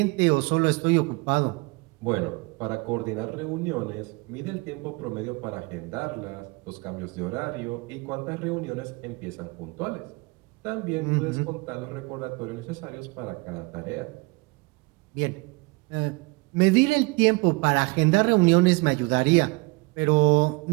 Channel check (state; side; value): quieter; left; 26.5 dB